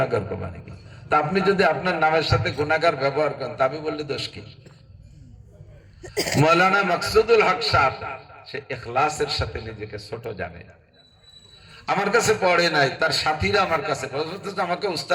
করবা নাকি? তা আপনি যদি আপনার নামের সাথে গুনাহগার ব্যবহার করেন, তা আমি বললে দোষ কি? মাওলানা মাকসুদুল হক সাহেব, সে ইখলাসের সাথে নিজেকে ছোট জানে। আমার কাছে পড়ে নাই, তার সাথীরা আমার কাছে আমাকে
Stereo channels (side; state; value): both; identical; correlation 1.00